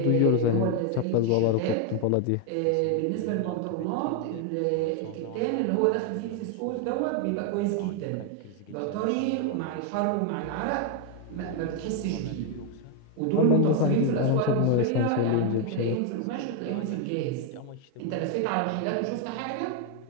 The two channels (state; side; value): different; both; correlation 0.01